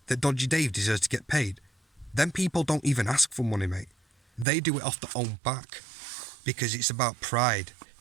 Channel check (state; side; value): drops out; left; at 4.5 s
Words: that Dodgy Dave deserves to get paid? Them people don't even ask for money, mate. They do it off their own back, because it's about pride.